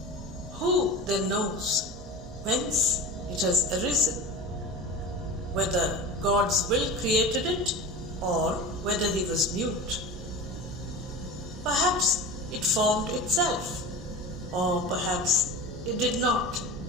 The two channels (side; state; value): both; normal; correlation 0.31